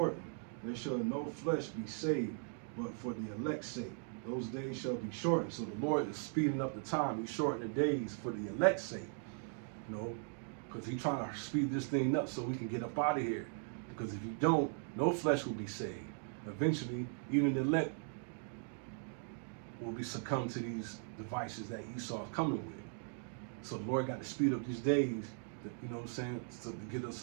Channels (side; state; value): left; silent; 52 dB below the other